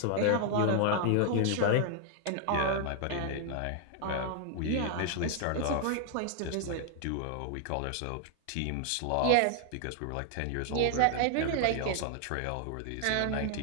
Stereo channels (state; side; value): different; both; correlation 0.00